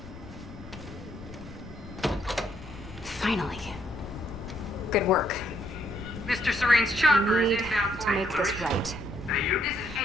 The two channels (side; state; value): left; noise; rumble, 16 dB below the sound